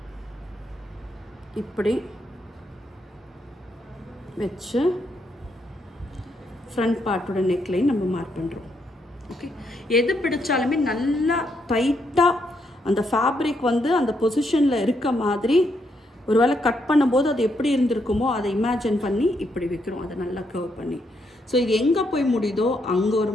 இப்படி வச்சு ஃப்ரண்ட் பார்ட்டோட நெக்லைன் நம்ம மார்க் பண்ணுறோம். ஓகே எது பிடிச்சாலுமே நல்லா டைட்டாக அந்த ஃபேப்ரிக் வந்து அந்த பொசிஷனில் இருக்க மாதிரி, ஒருவேளை கட் பண்ணும்போது அது எப்படி இருந்திருக்குமோ அதை இமேஜின் பண்ணி இப்படி வைக்கிறோம், அதை நல்லா கர்வ் பண்ணி. ஸோ இது எங்கே போய் முடியுதோ அங்கே ஒரு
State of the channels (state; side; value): normal; both; correlation 0.77